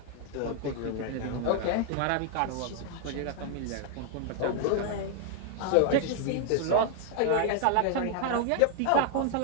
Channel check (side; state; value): both; different; correlation 0.00